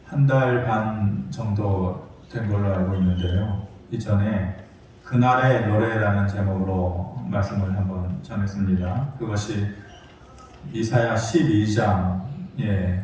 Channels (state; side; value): identical; both; correlation 1.00